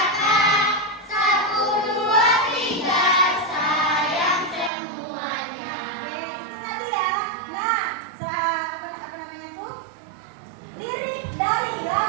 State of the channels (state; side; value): drops out; left; at 4.7 s